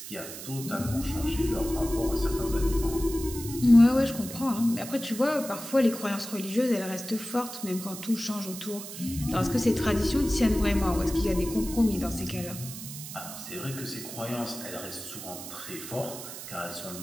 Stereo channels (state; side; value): noise; right; hiss, 11 dB below the sound